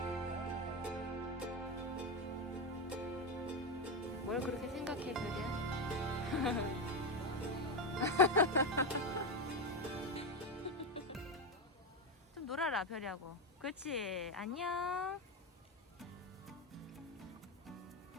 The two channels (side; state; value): both; normal; correlation 0.12